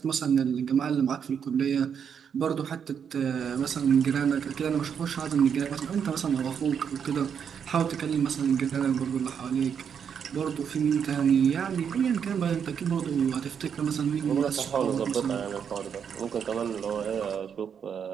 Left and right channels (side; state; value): left; quieter; 7.5 dB